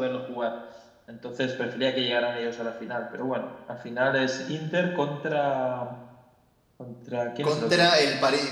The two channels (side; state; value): both; identical; correlation 1.00